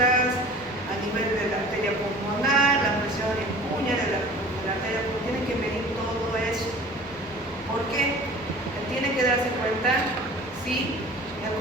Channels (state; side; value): normal; both; correlation 0.43